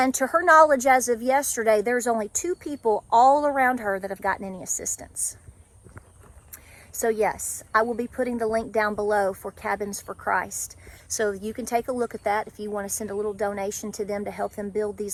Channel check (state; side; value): identical; both; correlation 1.00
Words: to her knowledge, as of yesterday, there's only 2 people all around her that have gotten any assistance. So yes, I will be putting the link down below for Cabins for Christ. So you can take a look at that if you want to send a little donation to them to help them build